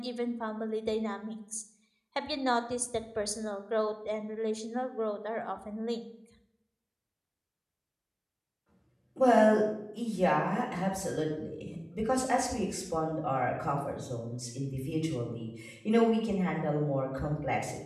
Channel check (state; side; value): identical; both; correlation 1.00